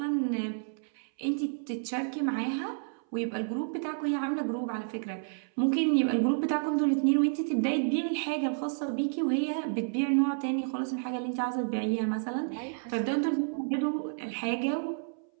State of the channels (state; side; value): silent; left; 58 dB below the other